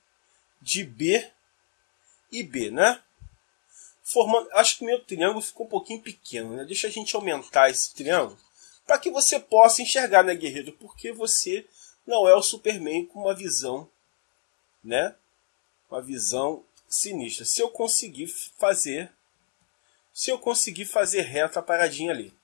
de B e B, né? Formando, acho que o meu triângulo ficou um pouquinho pequeno, né? Deixa a gente aumentar esse triângulo para que você possa enxergar, né, guerreiro? Porque você não é o Superman com uma visão, né? Uma visão sinistra. Se eu conseguir fazer reta a paradinha ali.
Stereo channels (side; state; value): right; silent; digital silence